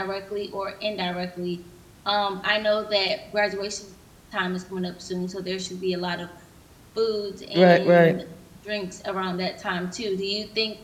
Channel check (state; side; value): identical; both; correlation 1.00